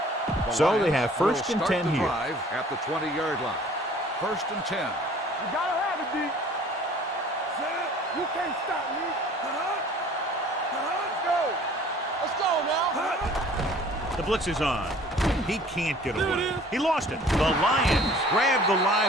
So they have first and 10 here. At the 20-yard line. First and 10. You gotta have it, D. You can't stop me. Let's go now. The blitz is on. He can't get away. He lost it. The Lions grab the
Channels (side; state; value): both; normal; correlation 0.51